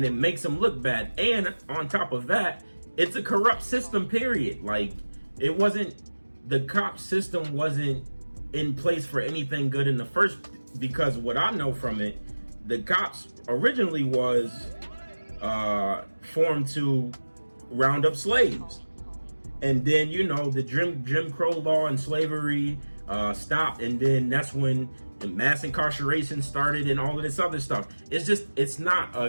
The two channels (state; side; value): inverted; both; correlation -1.00